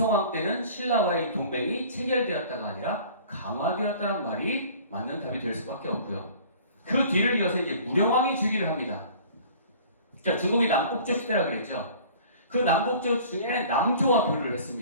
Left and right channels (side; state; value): both; inverted; correlation -0.47